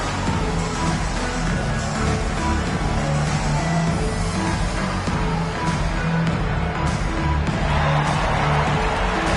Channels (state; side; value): identical; both; correlation 1.00